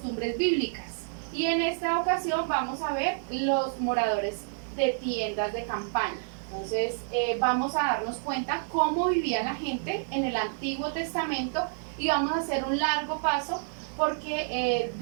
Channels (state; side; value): silent; left; digital silence